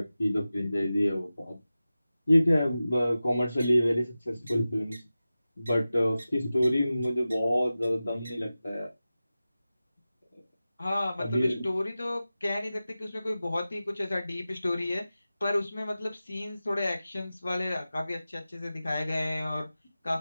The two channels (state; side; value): inverted; both; correlation -0.95